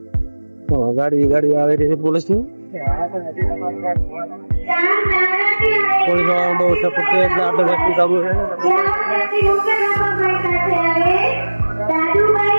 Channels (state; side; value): inverted; both; correlation -1.00